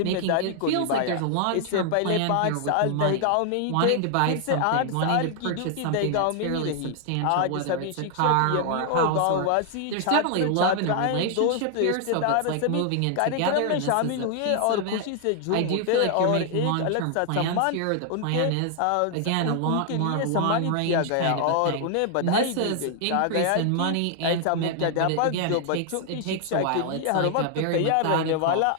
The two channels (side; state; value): both; different; correlation 0.00